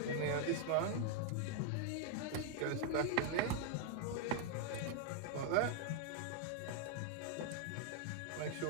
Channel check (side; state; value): both; different; correlation 0.00